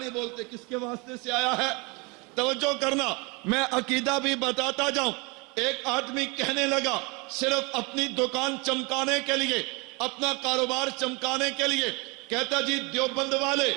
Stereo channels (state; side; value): quieter; left; 28.7 dB